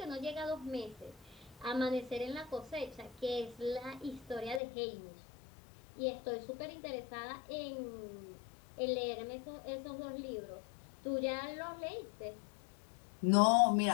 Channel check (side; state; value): right; drops out; at 4.6 s